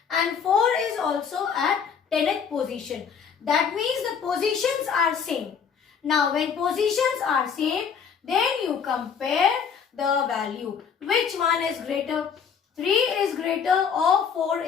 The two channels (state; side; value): quieter; right; 6.9 dB